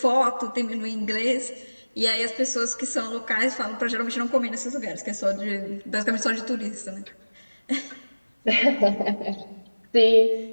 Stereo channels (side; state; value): both; inverted; correlation -1.00